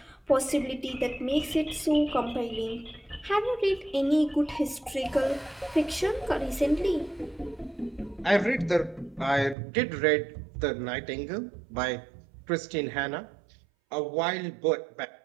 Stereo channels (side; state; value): left; drops out; at 9.6 s